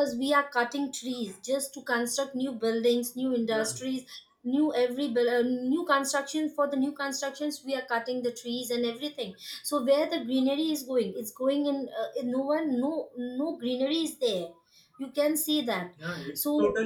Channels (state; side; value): identical; both; correlation 1.00